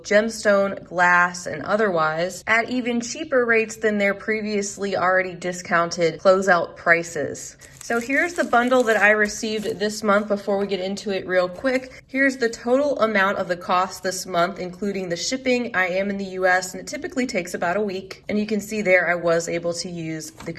gemstone, glass, and otherwise, at even cheaper rates than their previously already discounted closeout prices. So here's the bundle that I received this month before we get into it real quick. Here's the total amount of the cost this month, including the shipping. I am in the US and it typically takes about a week. And you can see there I was able to use the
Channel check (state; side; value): identical; both; correlation 1.00